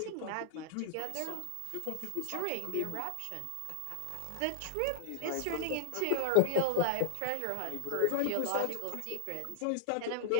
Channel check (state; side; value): different; both; correlation 0.00